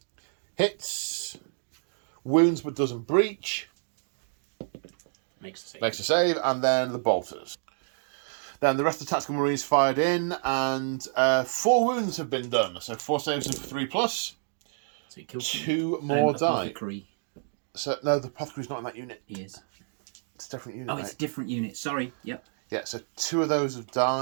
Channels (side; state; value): left; silent; digital silence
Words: Hits. Wounds but doesn't breach. Makes a save, and then the bolters. Then the rest of the tactical marines fired in, and 4 wounds have been done, so 4 saves and 3+. So he killed 2 more die. Apothecary. So no, the apothecary's not in that unit. He is. It's a different unit. Oh, it's a different unit. Sorry. Yep. Yeah, so 2 of those have